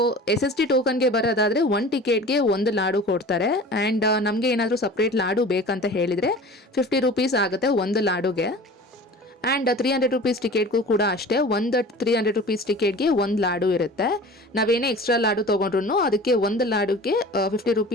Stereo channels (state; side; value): normal; both; correlation 0.40